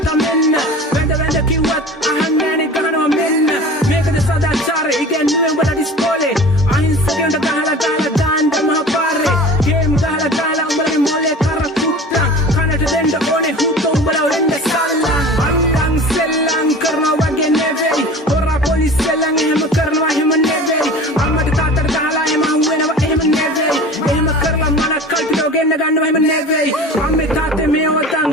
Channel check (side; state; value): both; normal; correlation 0.39